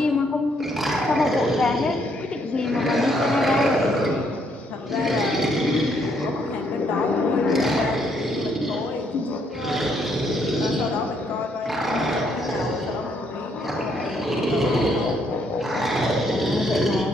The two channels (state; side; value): normal; both; correlation 0.71